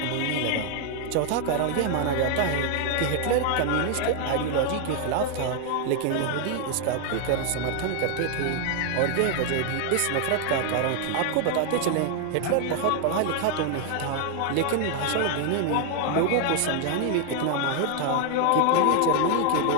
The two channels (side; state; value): both; different; correlation 0.00